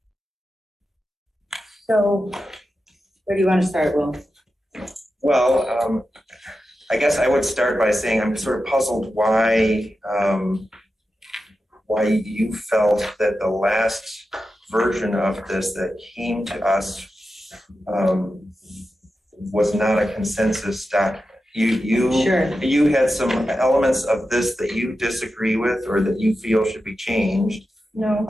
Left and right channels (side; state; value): both; normal; correlation 0.91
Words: so where do you want to start, Will? Well, I guess I would start by saying I'm sort of puzzled why you felt that the last version of this that came to us was not a consensus document. You had some elements of this that you disagree with or that you feel should be changed. No.